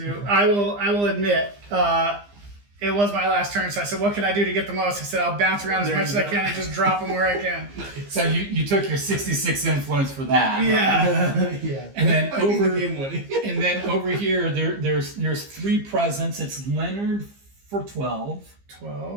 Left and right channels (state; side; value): late; left; 15 ms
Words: I will admit, it was my last turn, so I said, what can I do to get the most? I said, I'll bounce around as There much you as I go. can and just drop them where I can. So you took your 66 influence for that. Yeah. Yeah. And then That might be the over game winning. and then over here there's 3 presents. It's Leonard for 12.